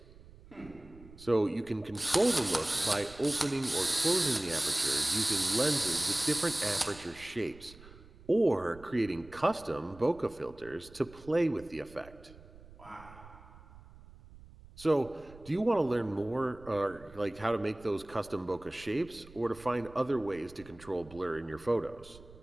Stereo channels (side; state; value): right; noise; rumble, 21 dB below the sound